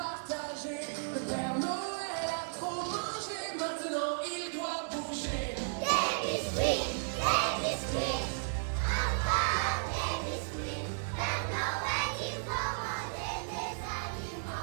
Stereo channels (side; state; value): left; silent; digital silence